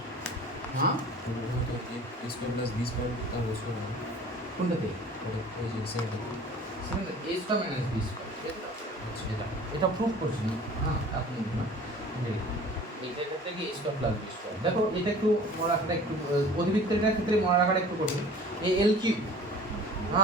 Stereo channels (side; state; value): both; normal; correlation 0.45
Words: हाँ वो तो a square plus b square का वो स्क्वायर है কোনটাতে और ये सेकंड সেখানে a square minus b square এটা প্রুফ করছি না। হ্যাঁ আপনি না এইটার ক্ষেত্রে কি a square plus b square. দেখো এটা একটু মনে রাখাটা একটু অধিবৃত্তের ক্ষেত্রে মনে রাখাটা একটু কঠিন। a l কিউব